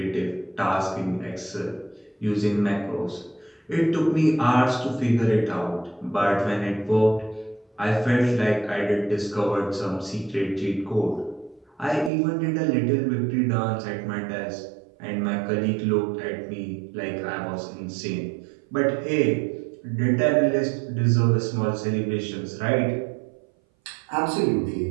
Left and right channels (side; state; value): left; drops out; at 12.1 s